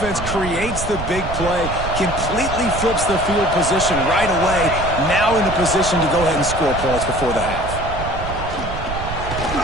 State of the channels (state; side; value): noise; right; rumble, 7 dB below the sound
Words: creates the big play, completely flips the field position right away, now in a position to go ahead and score points before the half.